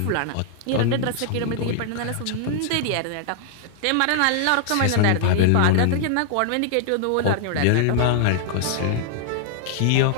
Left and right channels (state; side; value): different; both; correlation -0.01